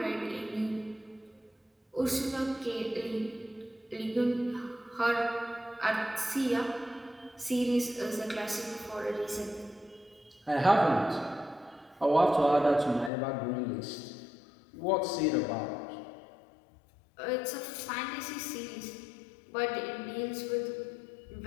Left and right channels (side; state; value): right; drops out; at 13.1 s